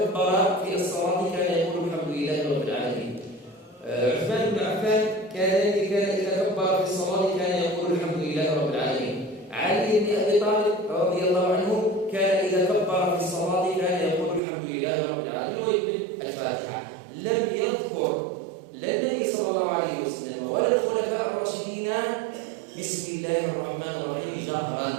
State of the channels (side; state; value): left; drops out; at 14.4 s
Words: في الصلاة كان يقول الحمد لله رب العالمين. عثمان بن عفان كان إذا كبر في الصلاة كان يقول الحمد لله رب العالمين. علي بن أبي طالب رضي الله عنه كان إذا كبر في الصلاة كان يقول الحمد لله رب العالمين ويقول الفاتحة. لم يذكر لا النبي صلى الله عليه وسلم ولا الخلفاء الراشدين بسم الله الرحمن الرحيم